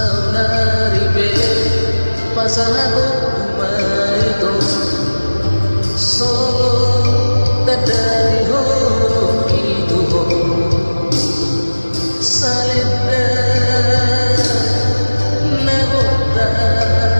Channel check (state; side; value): inverted; both; correlation -1.00